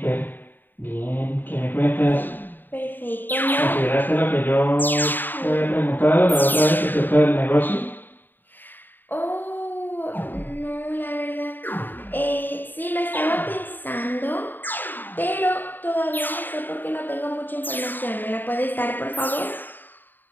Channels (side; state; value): right; late; 0.091 ms